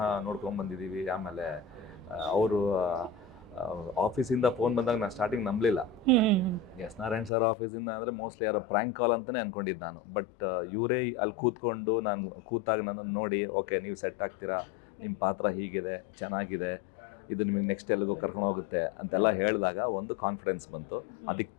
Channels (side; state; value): right; drops out; at 7.3 s